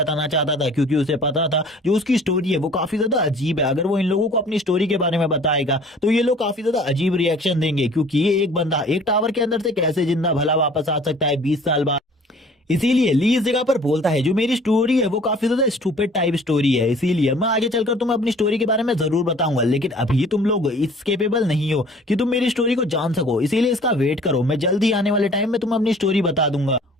चाहता था क्योंकि उसे पता था जो उसकी स्टोरी है वो काफी ज्यादा अजीब है। अगर वो इन लोगों को अपनी स्टोरी के बारे में बताएगा तो ये लोग काफी ज्यादा अजीब रिएक्शन देंगे क्योंकि ये एक बंदा एक टावर के अंदर से कैसे जिंदा भला वापस आ सकता है 20 साल बाद। इसीलिए ली इस जगह पर बोलता है जो मेरी स्टोरी है वो काफी ज्यादा स्टूपिड टाइप स्टोरी है, इसीलिए मैं आगे चलकर तुम्हें अपनी स्टोरी के बारे में जरूर बताऊंगा, लेकिन अभी तुम लोग इस केपेबल नहीं हो कि तुम मेरी स्टोरी को जान सको, इसीलिए इसका वेट करो, मैं जल्दी आने वाले टाइम में तुम्हें अपनी स्टोरी बता दूंगा।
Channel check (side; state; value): both; normal; correlation 0.50